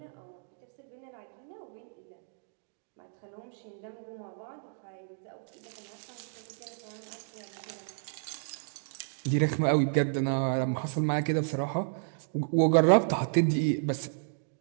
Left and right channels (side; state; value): left; silent; digital silence